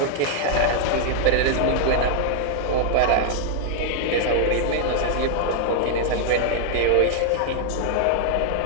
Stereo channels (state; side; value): different; both; correlation -0.01